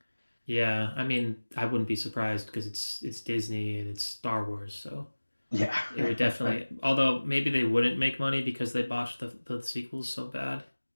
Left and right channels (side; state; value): both; inverted; correlation -1.00